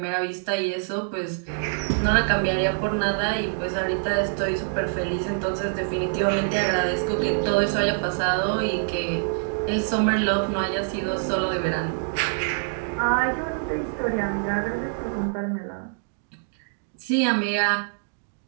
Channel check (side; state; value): left; silent; digital silence